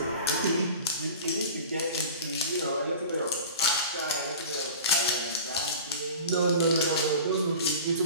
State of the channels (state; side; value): inverted; both; correlation -0.38